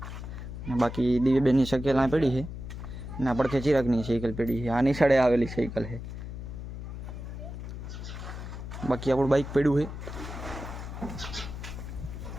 બાકી દિવ્યબેનની સાયકલ આ પડી છે ને આ પડખે ચિરાગની સાયકલ પડી છે. આની સાડે આવેલી સાયકલ છે. બાકી આપણું બાઇક પડ્યું છે.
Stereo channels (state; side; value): noise; left; hum, 8 dB below the sound